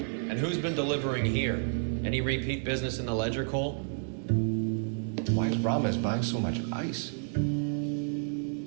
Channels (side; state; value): left; silent; digital silence